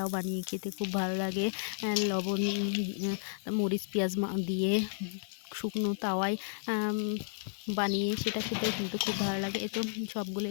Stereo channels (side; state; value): right; silent; digital silence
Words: বানিয়ে খেতে খুব ভালো লাগে। লবণ, মরিচ, পেঁয়াজ দিয়ে শুকনো তাওয়ায় বানিয়ে সেটা খেতেও কিন্তু খুব ভালো লাগে। তো সবগুলো